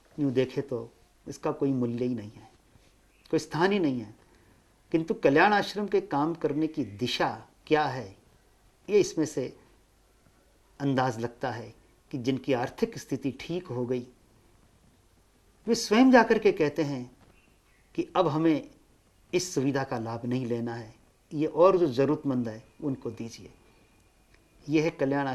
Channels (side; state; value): both; identical; correlation 1.00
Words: यूँ देखे तो इसका कोई मूल्य ही नहीं है, कोई स्थान ही नहीं है। किंतु कल्याण आश्रम के काम करने की दिशा क्या है, ये इसमें से अंदाज लगता है कि जिनकी आर्थिक स्थिति ठीक हो गई वे स्वयं जाकर के कहते हैं कि अब हमें इस सुविधा का लाभ नहीं लेना है, ये और जो ज़रूरतमंद है उनको दीजिए। यह है कल्याण